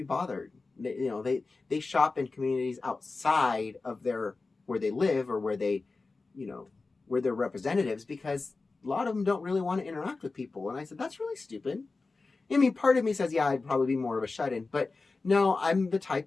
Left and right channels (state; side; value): quieter; right; 3.8 dB